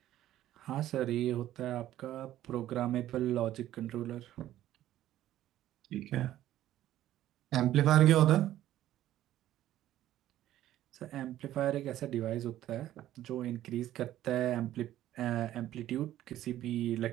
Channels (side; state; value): left; quieter; 13.2 dB